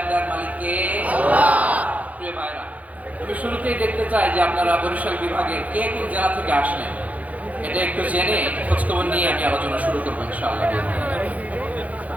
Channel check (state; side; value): late; left; 0.071 ms